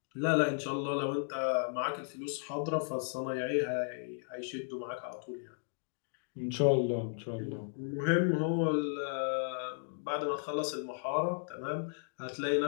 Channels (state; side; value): silent; right; digital silence